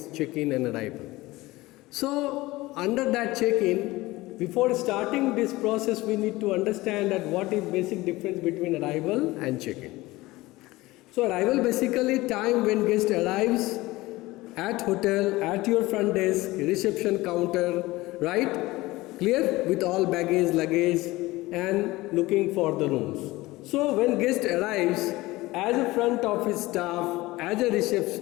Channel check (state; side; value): quieter; right; 19.6 dB